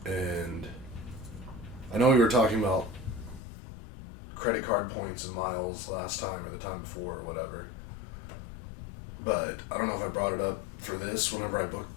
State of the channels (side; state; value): right; drops out; at 3.4 s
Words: And I know we were talking about credit card points and miles last time or the time before or whatever. But I don't know if I brought it up for this whenever I booked